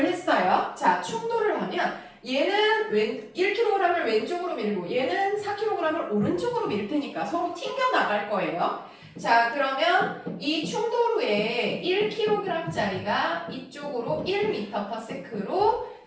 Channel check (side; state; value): both; identical; correlation 1.00